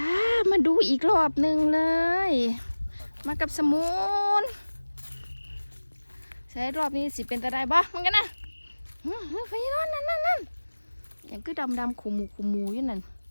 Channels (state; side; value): inverted; both; correlation -1.00